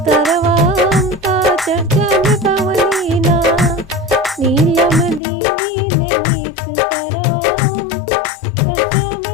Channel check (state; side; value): drops out; right; at 5.2 s